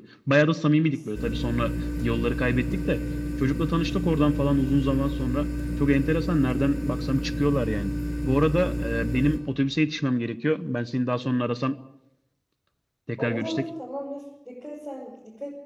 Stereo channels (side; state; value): both; identical; correlation 1.00